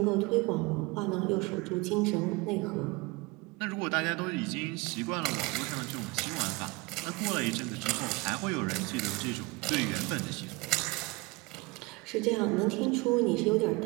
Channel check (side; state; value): left; quieter; 24.9 dB